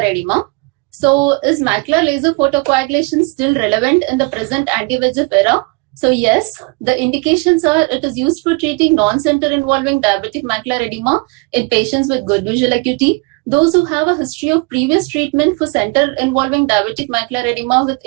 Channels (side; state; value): left; quieter; 29.2 dB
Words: edema. So is macular laser photocoagulation still relevant in the present anti-VEGF era? So yes, the indications are it is used for treating non-center involving diabetic macular edema in patients with good visual acuity, those who have a history of previous treatment for center involving diabetic macular edema with